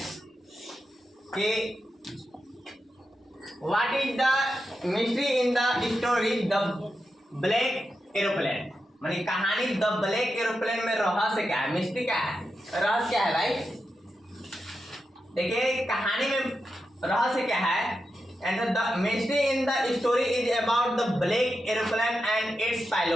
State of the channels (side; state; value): both; normal; correlation 0.88